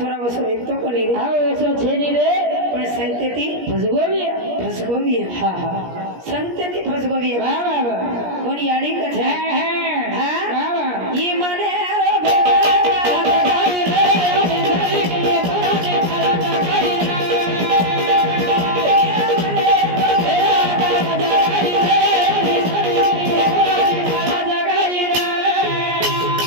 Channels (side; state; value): left; late; 17 ms